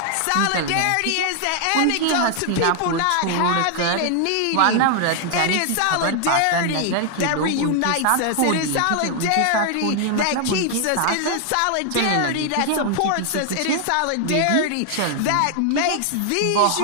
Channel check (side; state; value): both; different; correlation 0.00